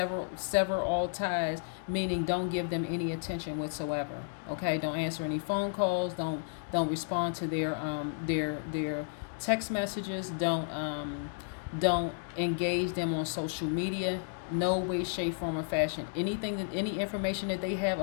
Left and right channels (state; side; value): silent; right; digital silence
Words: all ties, meaning don't give them any attention whatsoever. Okay, don't answer any phone calls. Don't respond to their text messages. Don't engage them on social media. No way, shape, form, or fashion. Any information that they have